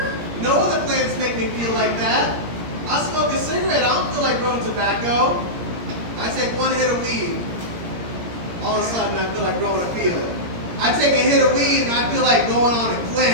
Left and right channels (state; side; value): late; left; 17 ms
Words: No other plants make me feel like that. I smoke a cigarette, I don't feel like growing tobacco. I take one hit of weed, all of a sudden I feel like growing a field. I take a hit of weed and I feel like going on a